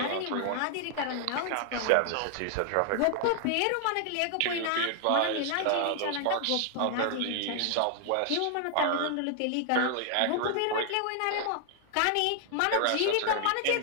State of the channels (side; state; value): both; different; correlation 0.00